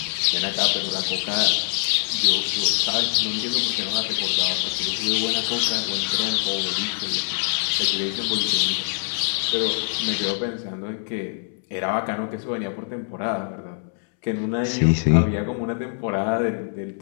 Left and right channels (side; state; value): right; silent; 63 dB below the other